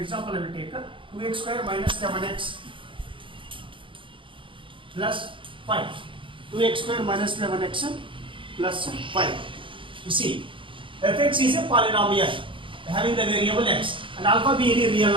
I will take 2x square minus 7x plus 5. 2x square minus 11x plus 5. You see, fx is a polynomial having the variable x and alpha be any real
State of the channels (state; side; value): late; left; 0.25 ms